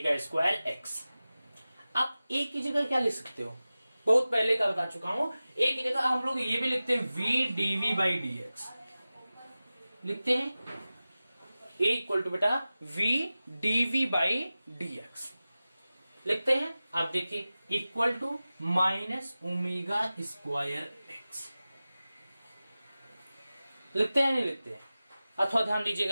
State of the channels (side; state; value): both; inverted; correlation -0.96